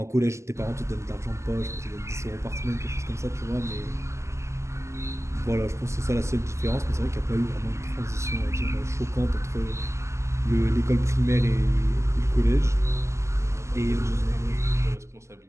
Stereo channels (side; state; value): left; late; 0.13 ms